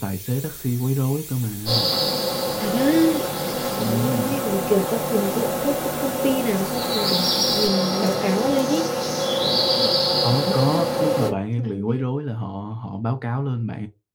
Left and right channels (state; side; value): identical; both; correlation 1.00